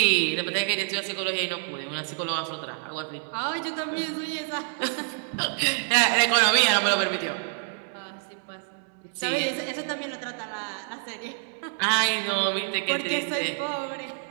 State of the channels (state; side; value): silent; left; digital silence